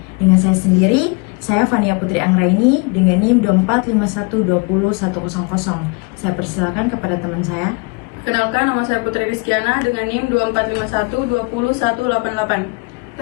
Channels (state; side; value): quieter; right; 30.6 dB